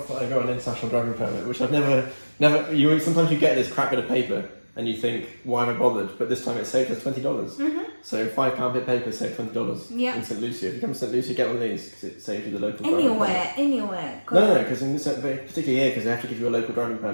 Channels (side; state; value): both; inverted; correlation -1.00